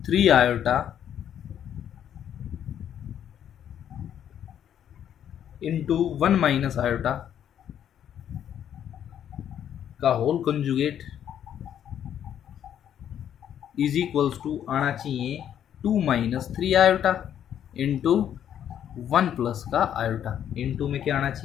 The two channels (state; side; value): quieter; right; 9.8 dB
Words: 3 iota into 1 minus iota का whole conjugate is equals to आना चाहिए 2 माइनस 3 आयोटा इंटू 1 प्लस का आयोटा। इंटू में क्या आना